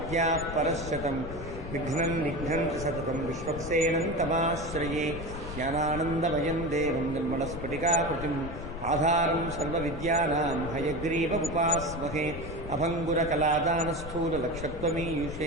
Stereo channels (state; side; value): noise; left; rumble, 9 dB below the sound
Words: परश्शतं विघ्नं निघ्नन्ति सततं विश्वक्सेनं तमाश्रये ज्ञानानन्दमयं देवं निर्मलस्फटिकाकृतिम् आधारं सर्वविद्यानां हयग्रीवमुपास्महे